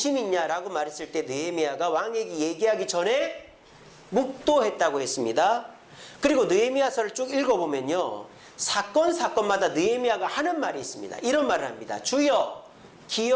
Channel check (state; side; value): identical; both; correlation 1.00